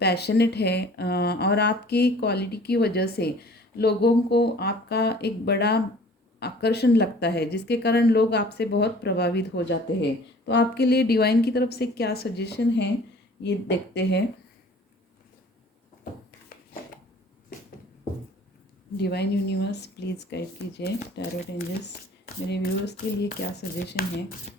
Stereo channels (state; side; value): normal; both; correlation 0.49